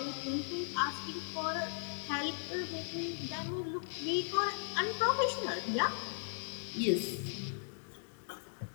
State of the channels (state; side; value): silent; right; digital silence